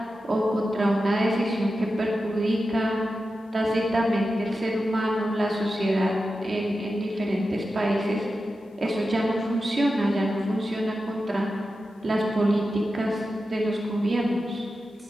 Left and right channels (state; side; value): normal; both; correlation 0.91